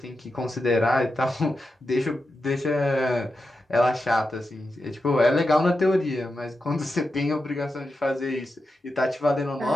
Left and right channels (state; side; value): normal; both; correlation 0.89